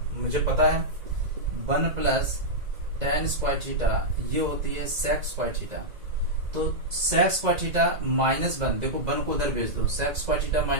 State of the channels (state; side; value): late; left; 1.9 ms